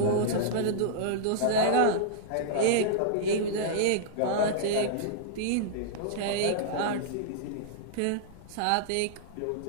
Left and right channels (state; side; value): different; both; correlation -0.02